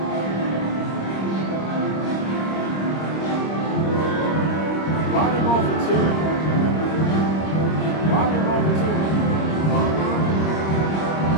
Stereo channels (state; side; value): late; right; 26 ms